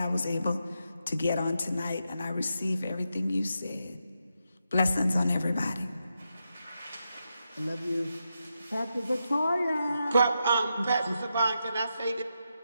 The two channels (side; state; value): both; inverted; correlation -0.86